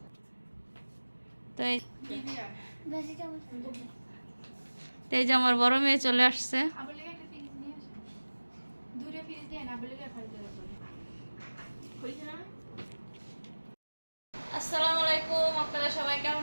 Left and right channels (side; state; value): both; inverted; correlation -1.00